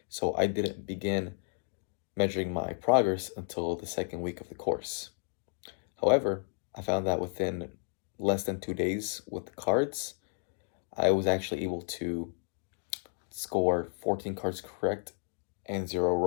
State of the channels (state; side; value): silent; right; digital silence